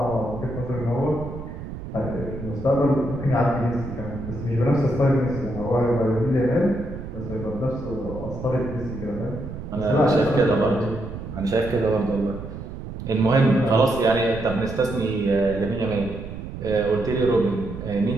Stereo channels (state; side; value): noise; right; rumble, 9 dB below the sound